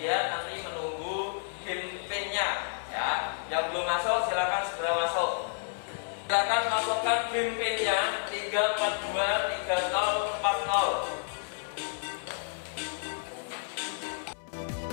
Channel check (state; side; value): silent; right; 57 dB below the other